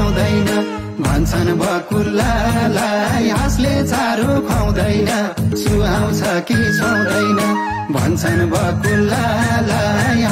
भन्छन् बकुल्लालाई हाँसले चारो खुवाउँदैन सुहाउँछ कि सुहाउँदैन भन्छन् बकुल्लालाई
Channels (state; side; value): identical; both; correlation 1.00